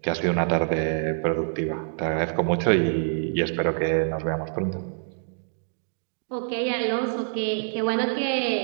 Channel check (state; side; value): silent; left; digital silence